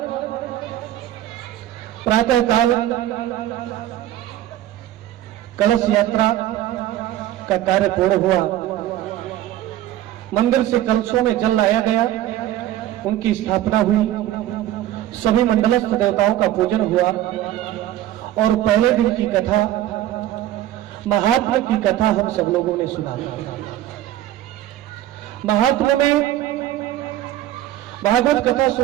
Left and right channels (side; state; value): left; quieter; 13.2 dB